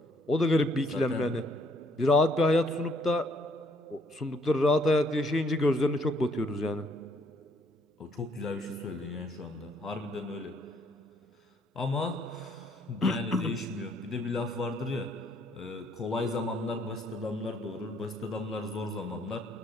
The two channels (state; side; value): normal; both; correlation 0.67